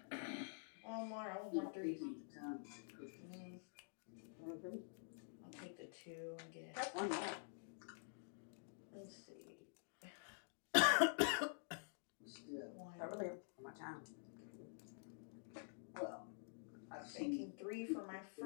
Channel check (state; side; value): silent; right; digital silence